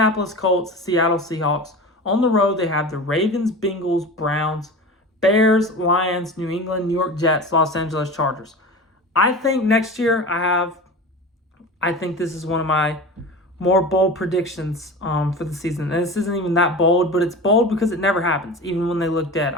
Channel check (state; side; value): normal; both; correlation 0.32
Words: Colts, Seattle Seahawks. On the road, they have the Ravens, Bengals, Browns, Bears, Lions, New England, New York Jets, Los Angeles Chargers. I think next year I think this is one of my more bold predictions for the season. And this isn't even that bold, but it's bold because it never happens, even when they look dead.